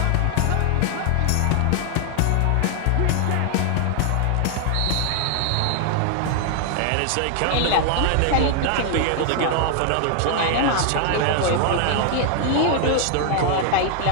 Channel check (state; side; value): different; both; correlation 0.00